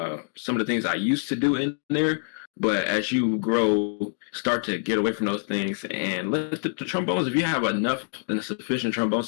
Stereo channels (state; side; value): silent; right; digital silence